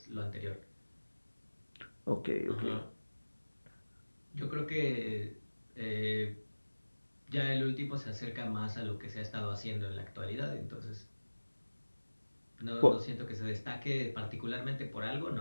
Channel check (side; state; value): both; inverted; correlation -1.00